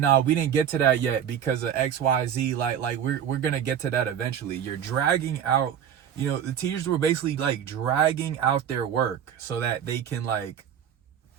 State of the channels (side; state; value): left; quieter; 9.0 dB